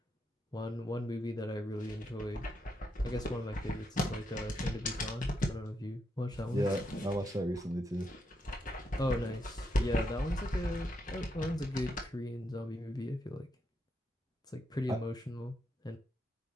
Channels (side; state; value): both; normal; correlation 0.81